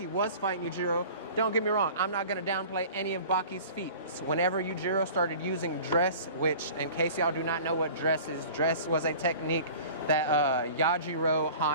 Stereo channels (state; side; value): inverted; both; correlation -0.42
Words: was fighting Yujiro, don't get me wrong, I'm not going to downplay any of Baki's feats. Whenever Yujiro started using dress, which in case y'all do not know what dress is, dress was a technique that Yajiro